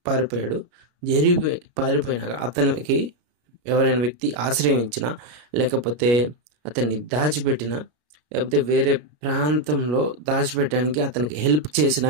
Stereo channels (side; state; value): left; late; 33 ms